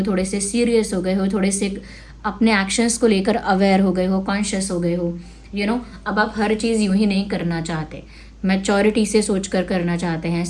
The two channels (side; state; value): both; identical; correlation 1.00